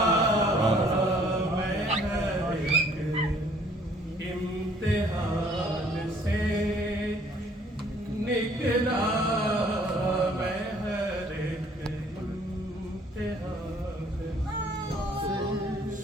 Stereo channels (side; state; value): both; normal; correlation 0.59